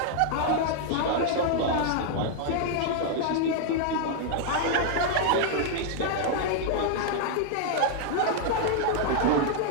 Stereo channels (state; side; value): different; both; correlation 0.00